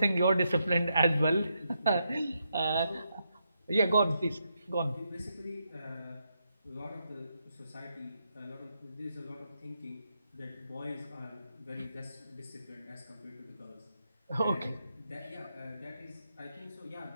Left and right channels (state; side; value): inverted; both; correlation -0.82